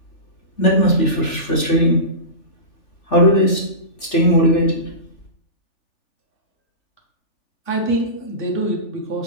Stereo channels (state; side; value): late; right; 3.4 ms